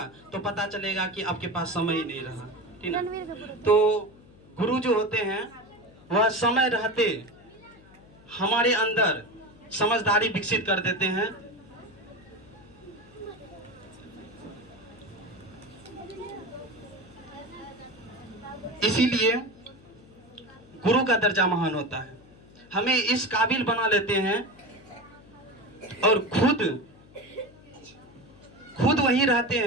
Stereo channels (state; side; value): noise; left; hum, 24 dB below the sound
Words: तो पता चलेगा कि आपके पास समय ही नहीं रहा। ठीक है, तो गुरु जो होते हैं वह समय रहते हमारे अंदर समझदारी विकसित कर देते हैं। इसीलिए गुरु का दर्जा महान होता है, हमें इस काबिल बना लेते हैं और खुद वहीं रहते